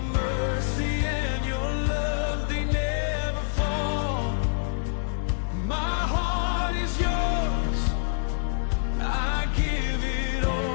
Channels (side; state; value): right; silent; 56 dB below the other